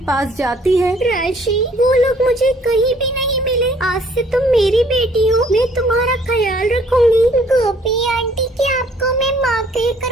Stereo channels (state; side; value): normal; both; correlation 0.60